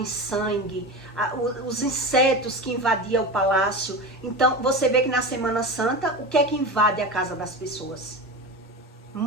sangue, os insetos que invadiam o palácio. Então, você vê que na Semana Santa, o que é que invade a casa das pessoas?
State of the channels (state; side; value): normal; both; correlation 0.25